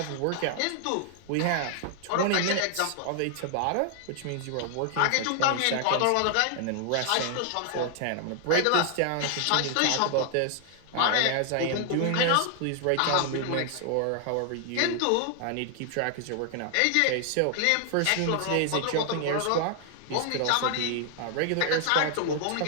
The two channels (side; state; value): both; different; correlation 0.00